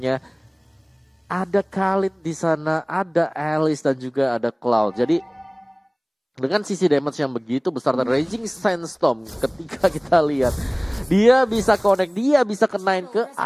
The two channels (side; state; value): both; identical; correlation 1.00